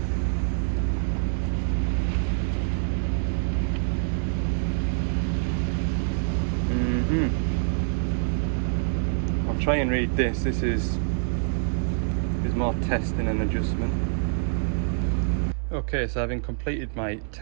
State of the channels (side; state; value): left; silent; 61 dB below the other